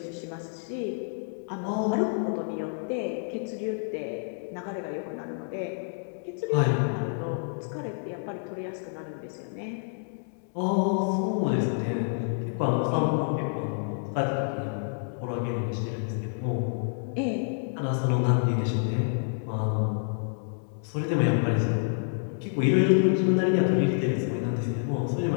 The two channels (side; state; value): right; silent; digital silence